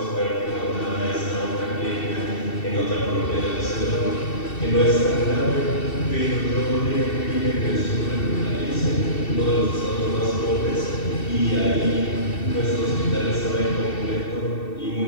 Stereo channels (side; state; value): right; late; 2.7 ms